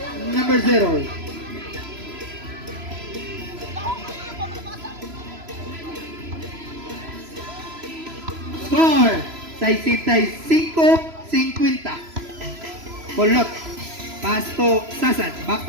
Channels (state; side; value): late; left; 3.0 ms